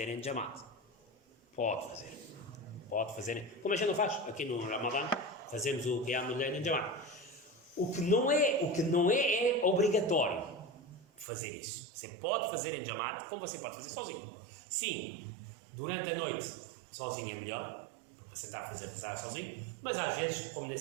em Jamaat. Pode fazer. Como a gente não faz aqui no Ramadã, fazemos o Qiyamul Layl em Jamaat. O que não é obrigatório fazer isso. Você pode fazer em Jamaat, como você pode fazer sozinho. Sim, durante a noite, sozinho é melhor, porque você está a fazer rezar sozinho, mas às vezes, como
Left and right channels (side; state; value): left; drops out; at 11.2 s